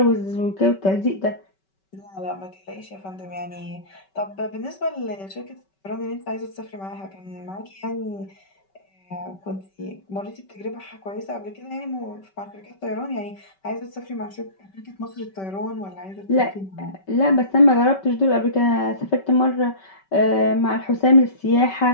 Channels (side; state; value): right; late; 5.2 ms